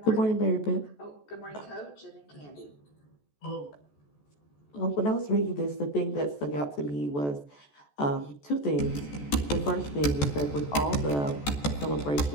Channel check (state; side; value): late; right; 14 ms